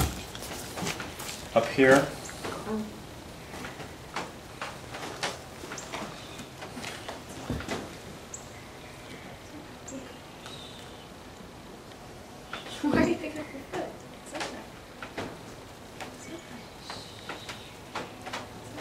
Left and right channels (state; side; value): noise; right; hum, 26 dB below the sound